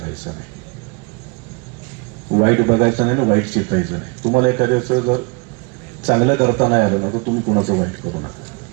नाही, वाईट बघायचं नाही ना वाईट चितायचं नाही. तुम्हाला एखाद्याचं जर चांगलं करता नाही आलं ना तर तुम्ही कुणाचं वाईट करू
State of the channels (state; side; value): quieter; left; 29.5 dB